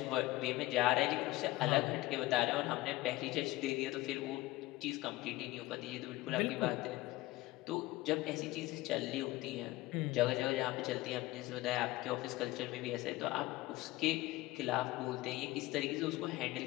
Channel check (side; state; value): right; quieter; 18.7 dB